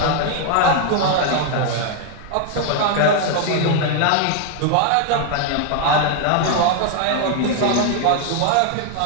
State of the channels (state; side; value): different; both; correlation 0.00